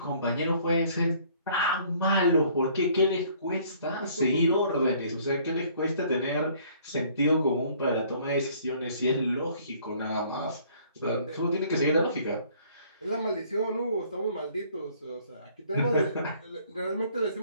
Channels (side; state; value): both; inverted; correlation -0.58